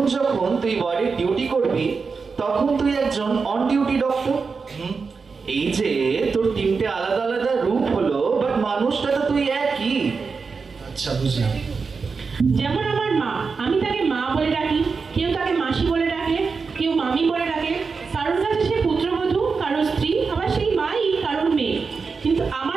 যখন তুই ওয়ার্ডে ডিউটি করবি তখন তুই একজন অন ডিউটি ডক্টর। এই যে তোর তিনটে আলাদা আলাদা রূপ হলো, বাট মানুষটা তো তুই একই। আচ্ছা বুঝলাম। যেমন আমার মা, আমি তাকে মা বলে ডাকি, কেউ তাকে মাসি বলে ডাকে, কেউ মামি বলে ডাকে, কারোর কাছে সে পুত্রবধূ, কারোর স্ত্রী, আবার সেই মাই কারোর মেয়ে। কিন্তু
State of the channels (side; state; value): left; quieter; 4.9 dB